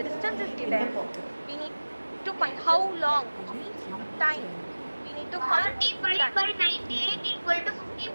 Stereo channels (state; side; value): inverted; both; correlation -1.00